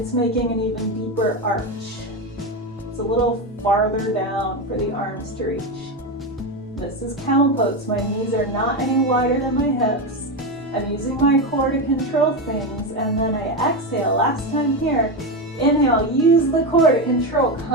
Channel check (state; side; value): normal; both; correlation 0.14